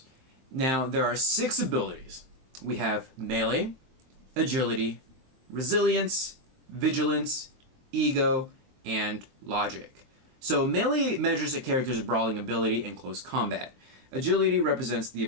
Now, there are 6 abilities. We have melee, agility, resilience, vigilance, ego, and logic. So melee measures a character's brawling ability in close combat. Agility represents the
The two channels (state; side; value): late; left; 23 ms